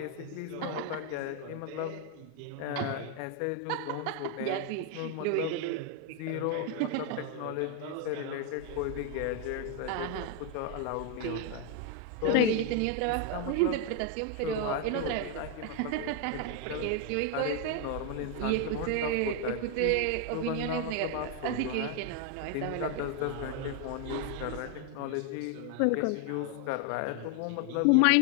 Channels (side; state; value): both; different; correlation 0.01